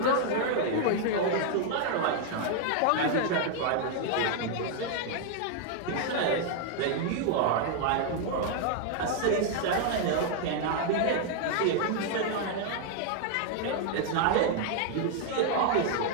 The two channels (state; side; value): different; both; correlation 0.00